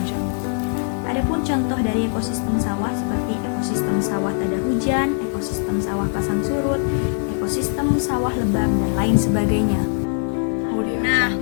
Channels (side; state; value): right; silent; 62 dB below the other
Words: Adapun contoh dari ekosistem sawah seperti ekosistem sawah tada hujan, ekosistem sawah pasang surut, ekosistem sawah lebak, dan lain sebagainya. Nah,